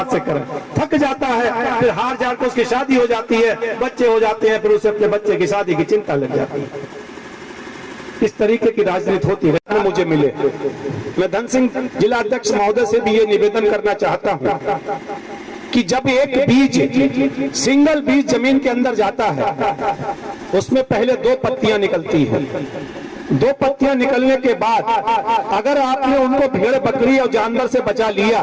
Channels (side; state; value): both; identical; correlation 1.00